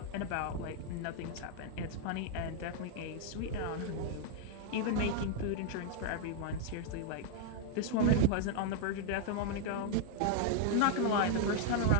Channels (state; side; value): different; both; correlation 0.00